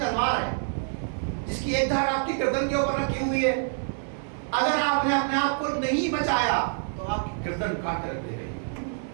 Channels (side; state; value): left; silent; 60 dB below the other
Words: ہے جس کی ایک دھار آپ کی گردن کے اوپر رکھی ہوئی ہے. اگر آپ نے اپنے آپ کو نہیں بچایا تو آپ کی گردن کاٹ کر رکھ دے گی،